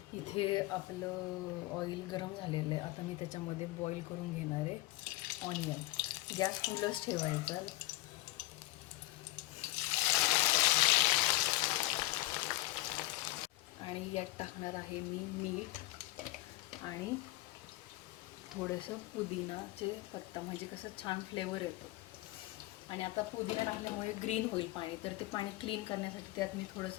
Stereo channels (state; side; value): quieter; right; 19.1 dB